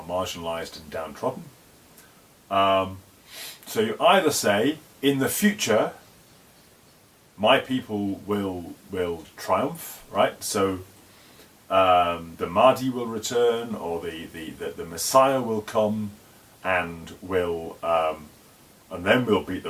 marginalised and downtrodden. So you either say, in the future, my people will triumph, right? So the Mahdi will return, or the Messiah will come and will and then we'll beat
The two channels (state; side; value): identical; both; correlation 1.00